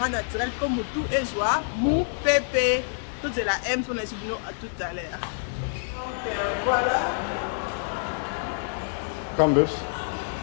naturel comme mutu ezwa mu pepe toute la M son esubino à tout à l'heure. Donc voilà. Campbell's.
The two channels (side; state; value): right; silent; 56 dB below the other